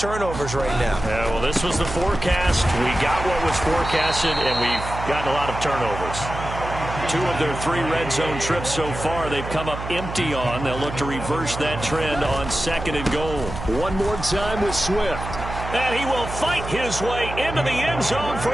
right now. Yeah, well, this was the forecast. We got what was forecasted, and we've gotten a lot of turnovers. 2 of their 3 red zone trips so far, they've come up empty on. They'll look to reverse that trend on 2nd and goal. One more time with Swift. And he will fight his way into the end zone for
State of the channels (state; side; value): noise; right; hum, 8 dB below the sound